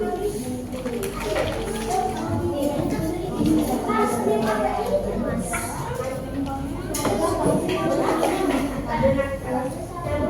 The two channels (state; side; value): identical; both; correlation 1.00